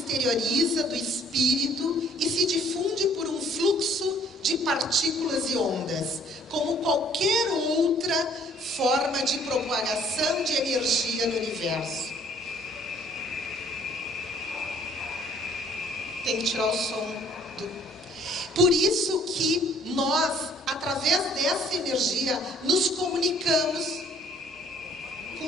do espírito e se difunde por um fluxo de partículas e ondas, como qualquer outra forma de propagação de energia no universo. Tem que tirar o som Por isso que nós, através dessa energia, nos comunicamos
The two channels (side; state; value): both; normal; correlation 0.59